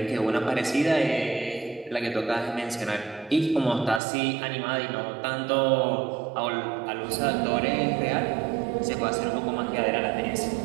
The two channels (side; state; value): left; drops out; at 4.0 s